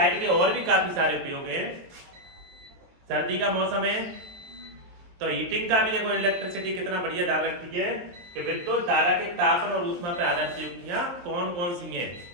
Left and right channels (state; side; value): late; left; 23 ms